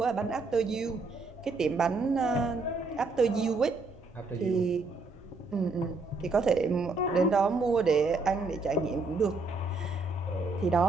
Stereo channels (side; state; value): left; quieter; 3.6 dB